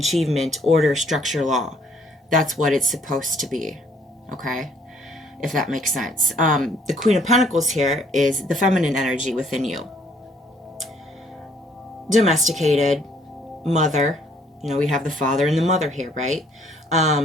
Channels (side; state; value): both; normal; correlation 0.63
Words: order, structure, law. That's what it's supposed to be. Okay? If that makes sense. The Queen of Pentacles here is the feminine energy within you. Domesticated, mother. We have the father and the mother here, right?